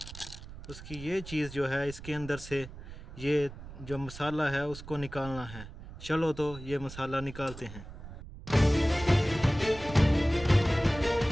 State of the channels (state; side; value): noise; right; rumble, 14 dB below the sound